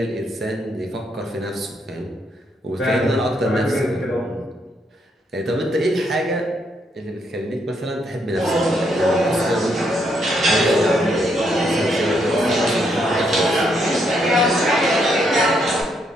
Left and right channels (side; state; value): both; normal; correlation 0.75